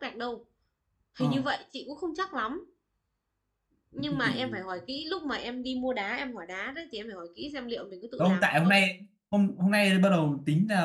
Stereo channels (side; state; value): both; identical; correlation 1.00